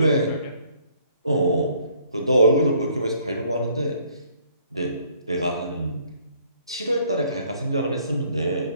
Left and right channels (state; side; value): inverted; both; correlation -0.63